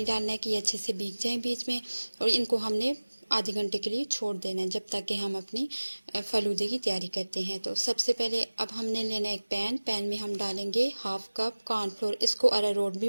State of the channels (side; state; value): both; inverted; correlation -1.00